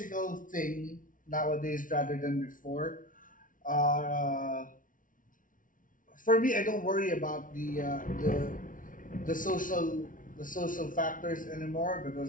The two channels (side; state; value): right; late; 0.38 ms